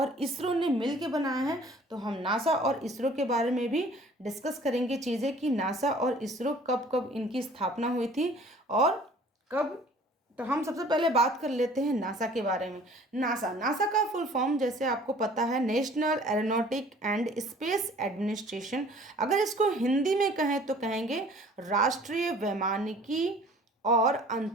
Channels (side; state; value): both; normal; correlation 0.51